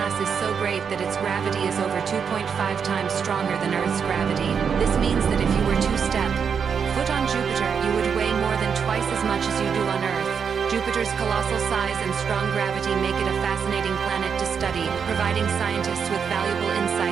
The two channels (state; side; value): quieter; left; 6.7 dB